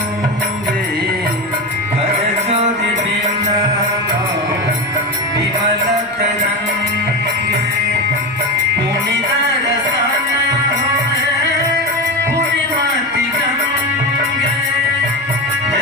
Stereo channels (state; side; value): normal; both; correlation 0.20